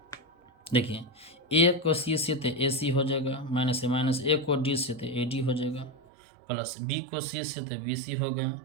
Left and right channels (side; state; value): left; drops out; at 6.0 s